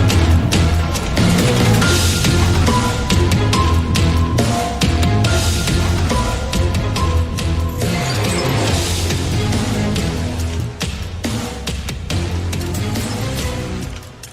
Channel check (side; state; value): both; identical; correlation 1.00